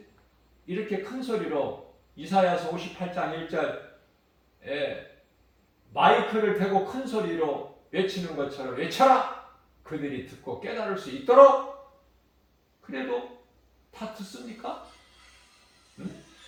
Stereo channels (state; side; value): identical; both; correlation 1.00